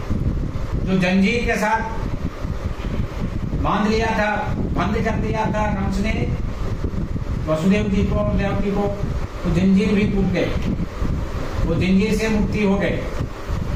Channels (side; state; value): both; identical; correlation 1.00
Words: जो जंजीर के साथ बांध लिया था, बंद कर दिया था कंस ने वसुदेव जी को, देवकी को, तो जंजीर भी टूट गए, वो जंजीर से मुक्ति हो गए।